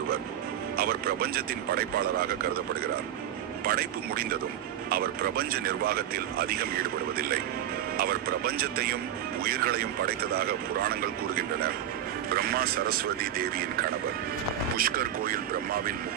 அவர் பிரபஞ்சத்தின் படைப்பாளராக கருதப்படுகிறார். படைப்பு முடிந்ததும் அவர் பிரபஞ்ச நிர்வாகத்தில் அதிகம் ஈடுபடுவதில்லை. அவர் பிரபஞ்சத்தையும் உயிர்களையும் படைத்ததாக புராணங்கள் கூறுகின்றன. பிரம்மா சரஸ்வதி தேவியின் கணவர். புஷ்கர் கோயில் பிரம்மாவின்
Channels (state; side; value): quieter; left; 10.8 dB